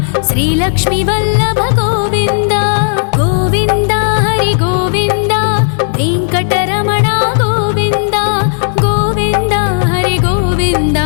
శ్రీ లక్ష్మీ వల్లభ గోవింద గోవింద హరి గోవింద వెంకటరమణ గోవింద గోవింద హరి గోవింద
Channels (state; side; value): silent; right; digital silence